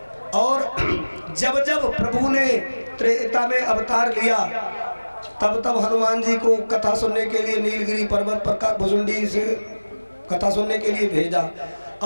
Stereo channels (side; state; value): both; inverted; correlation -1.00